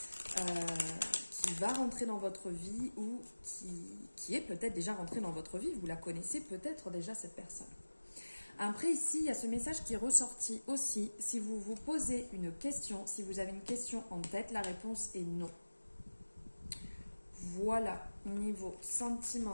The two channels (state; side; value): inverted; both; correlation -1.00